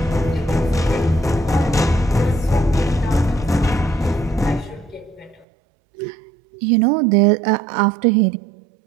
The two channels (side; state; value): left; drops out; at 5.5 s